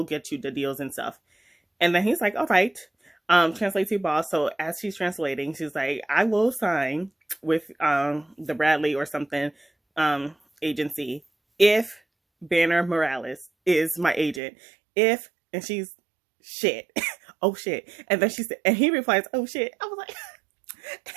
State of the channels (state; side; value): drops out; left; at 14.4 s